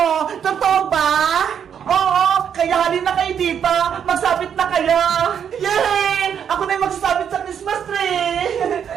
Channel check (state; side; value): quieter; left; 8.2 dB